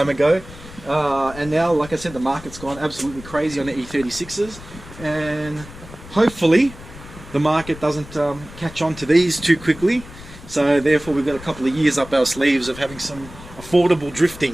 ago, and now, like I said, the market's gone absolutely crazy on the E36s, and hopefully the market doesn't catch on to these too quickly, so therefore we've got a couple of years up our sleeves of having some affordable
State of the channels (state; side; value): noise; left; rumble, 16 dB below the sound